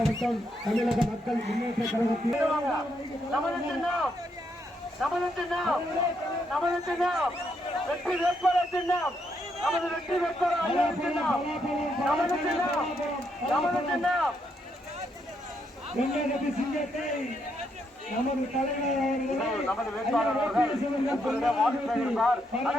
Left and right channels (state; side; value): normal; both; correlation 0.77